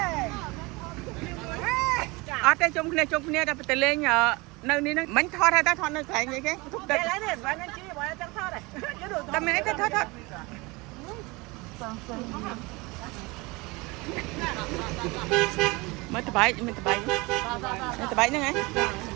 អត់ទេជុំគ្នាតែទៅលេងនៅនេះហ្នឹងមិនថតហើយតែថតនៅកន្លែងនេះគេទុកទឹកនេះបានជីបើចង់ថតហ៎តែមានអីទៅថត mới từ bảy nữa ngay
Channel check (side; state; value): left; quieter; 24.7 dB